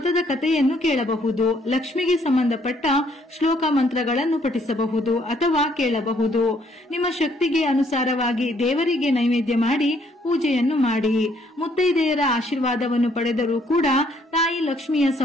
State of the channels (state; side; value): normal; both; correlation 0.67